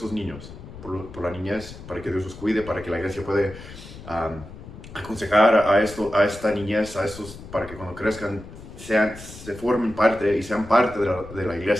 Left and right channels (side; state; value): left; noise; rumble, 15 dB below the sound